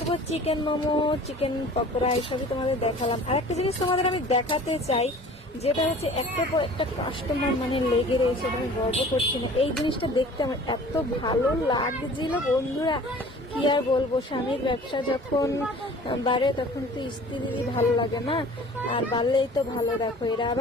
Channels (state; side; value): normal; both; correlation 0.46